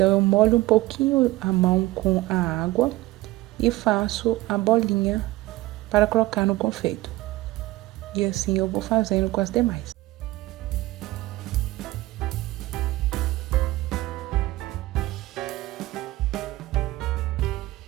eu molho um pouquinho a mão com a água e faço a bolinha para colocar no confeito. E assim eu vou fazendo com as demais.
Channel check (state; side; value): quieter; left; 18.1 dB